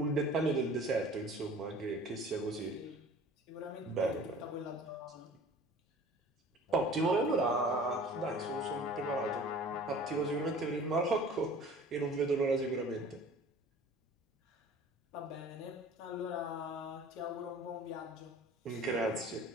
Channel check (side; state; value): both; normal; correlation 0.45